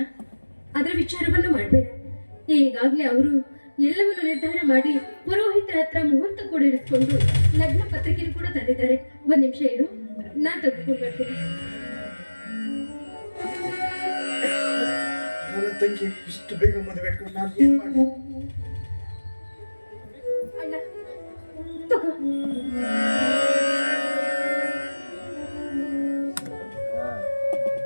ಅದರ ವಿಚಾರವನ್ನು ಮಾಡಬೇಡ. ಈಗಾಗಲೇ ಅವರು ಎಲ್ಲವನ್ನು ನಿರ್ಧಾರ ಮಾಡಿ ಪುರೋಹಿತರ ಹತ್ರ ಮುಹೂರ್ತ ಕೂಡ ಇರಿಸ್ಕೊಂಡು ಲಗ್ನ ಪತ್ರಿಕೆ ಕೂಡ ತಂದಿದ್ದಾರೆ. ಒಂದ್ ನಿಮಿಷ ಇರು, ನಾನ್ ತೆಗೆದುಕೊಂಡು ಬರ್ತೀನಿ. ನನ್ನ ತಂಗಿ ಇಷ್ಟು ಬೇಗ ಮದುವೆ ಇಟ್ಕೊಂಡು ನಾನು ಏನ್ ಮಾಡಿ? ಅಣ್ಣ ತಗೋ.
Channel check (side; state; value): both; inverted; correlation -1.00